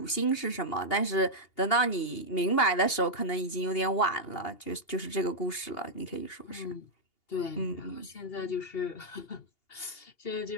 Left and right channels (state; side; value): late; right; 2.8 ms